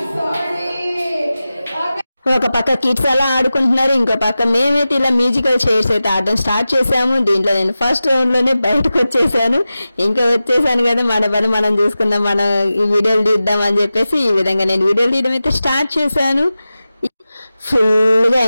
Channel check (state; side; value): inverted; both; correlation -0.94